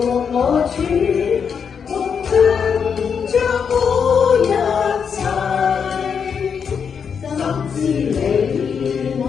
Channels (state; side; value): quieter; right; 6.7 dB